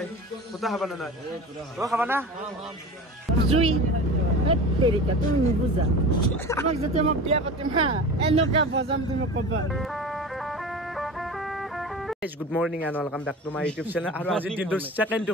Kota apa nanai? Oh, apa na? Zui, teri ka tu ni buza. Mak jate mak biya patim ha. Eno ka bozam tu mak kabar. Good morning and welcome back to my YouTube channel. Aru aji din do second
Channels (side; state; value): both; normal; correlation 0.33